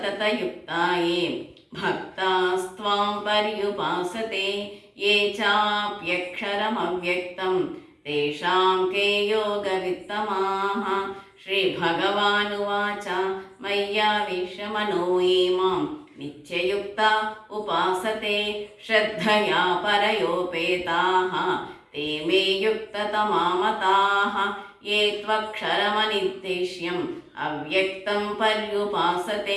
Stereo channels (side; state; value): both; identical; correlation 1.00